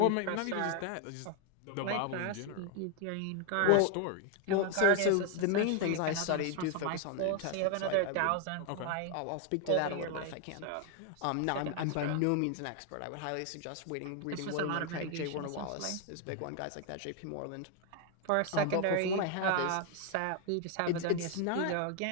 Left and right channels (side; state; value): both; different; correlation 0.01